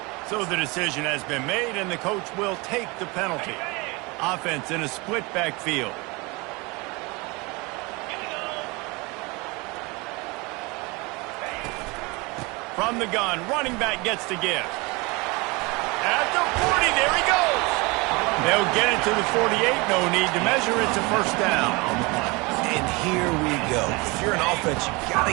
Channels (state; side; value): quieter; left; 26.1 dB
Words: So the decision has been made, and the coach will take the penalty. Offense in a split backfield. From the gun, running back gets to give. At the 40, there he goes. They'll get it to the 48, no need to measure it to first down. And here we go. If you're an offense, you got to